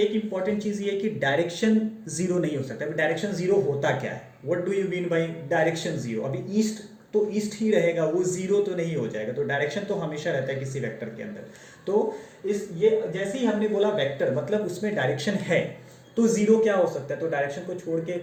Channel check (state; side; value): identical; both; correlation 1.00